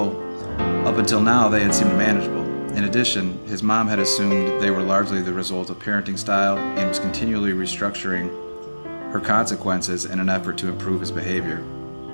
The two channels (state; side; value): inverted; both; correlation -1.00